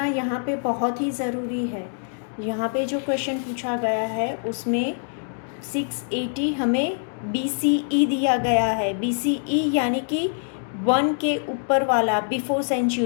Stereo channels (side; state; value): right; silent; 62 dB below the other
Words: यहाँ पे बहुत ही ज़रूरी है। यहाँ पे जो क्वेश्चन पूछा गया है उसमें 680 हमें BCE दिया गया है। BCE यानी कि 1 के ऊपर वाला, बिफोर